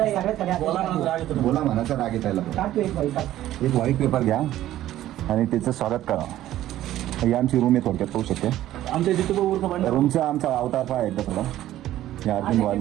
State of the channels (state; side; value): quieter; left; 13.6 dB